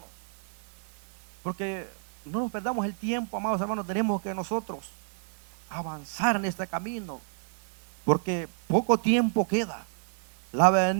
porque no nos perdamos el tiempo, amados hermanos. Tenemos que nosotros avanzar en este camino, porque poco tiempo queda. La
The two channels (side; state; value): left; silent; 58 dB below the other